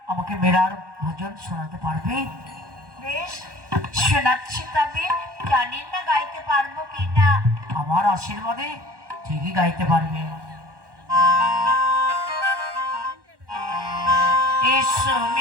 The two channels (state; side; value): late; left; 1.1 ms